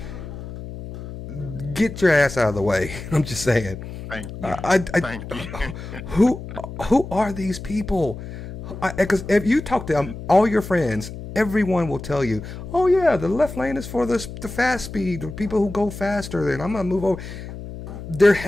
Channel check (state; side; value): noise; left; hum, 11 dB below the sound